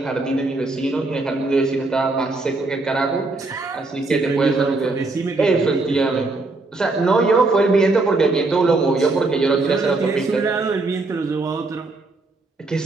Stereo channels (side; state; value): left; quieter; 3.3 dB